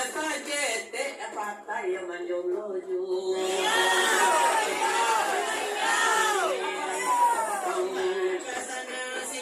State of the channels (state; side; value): identical; both; correlation 1.00